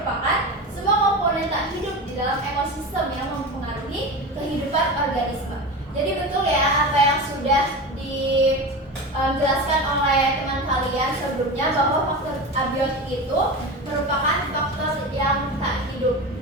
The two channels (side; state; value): both; normal; correlation 0.26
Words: semua komponen tak hidup di dalam ekosistem yang mempengaruhi kehidupan organisme. Jadi betul ya apa yang sudah dijelaskan oleh teman kalian sebelumnya, bahwa faktor abiotik itu merupakan faktor yang tak hidup